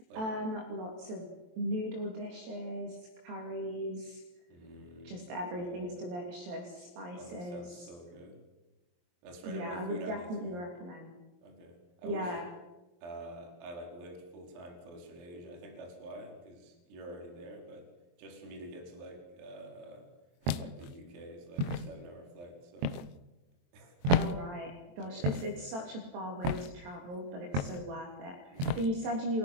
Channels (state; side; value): late; left; 23 ms